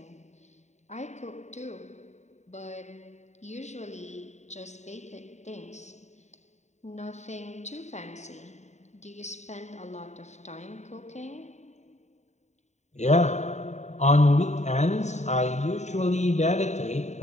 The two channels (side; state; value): right; late; 0.34 ms